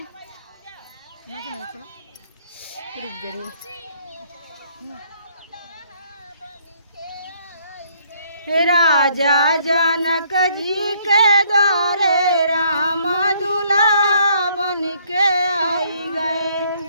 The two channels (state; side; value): inverted; both; correlation -0.65